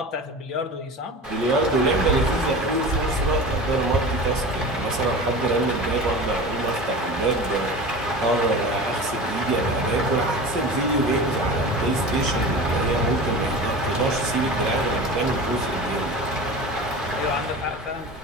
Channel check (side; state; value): both; normal; correlation 0.33